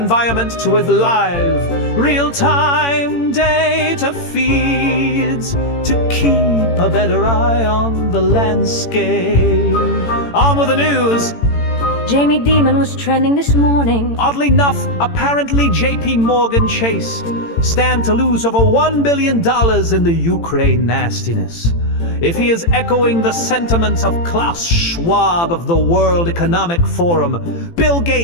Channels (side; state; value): right; late; 18 ms